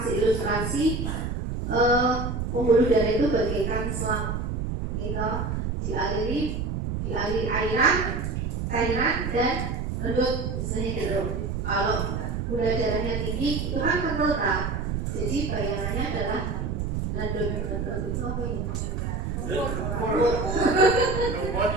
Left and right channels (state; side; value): noise; right; rumble, 2 dB below the sound